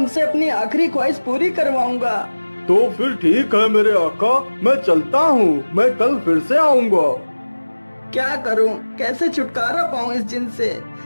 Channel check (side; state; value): both; inverted; correlation -1.00